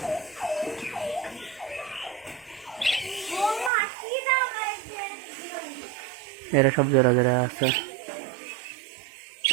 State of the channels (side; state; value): left; drops out; at 3.7 s